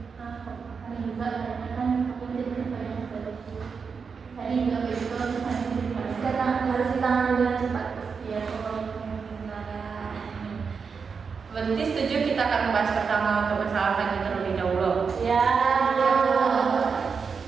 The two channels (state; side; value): quieter; left; 5.6 dB